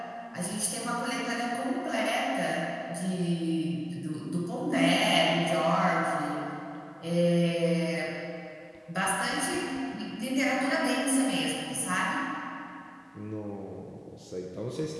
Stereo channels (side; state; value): both; identical; correlation 1.00